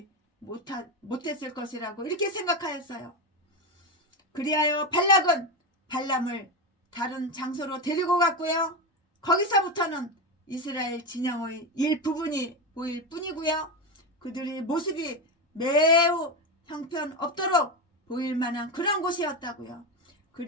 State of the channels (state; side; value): normal; both; correlation 0.15